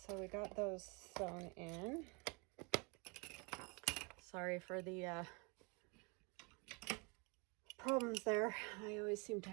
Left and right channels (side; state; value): left; quieter; 30.7 dB